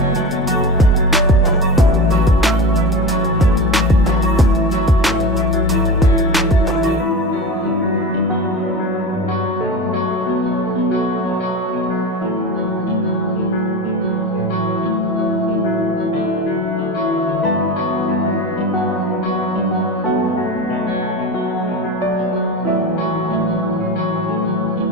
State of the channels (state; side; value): normal; both; correlation 0.27